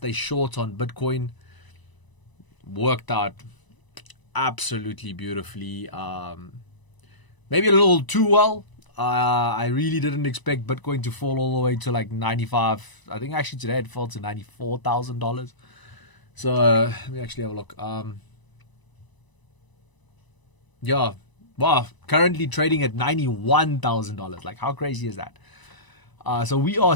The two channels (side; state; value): right; late; 1.0 ms